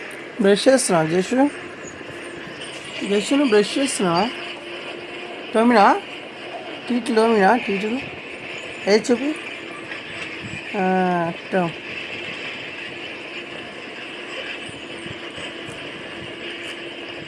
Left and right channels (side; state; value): both; identical; correlation 1.00